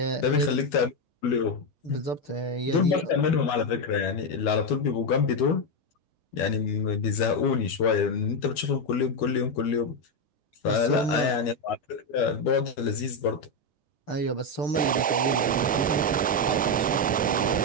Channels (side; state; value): both; normal; correlation 0.07